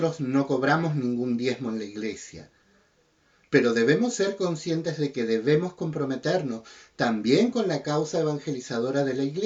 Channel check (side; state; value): both; identical; correlation 1.00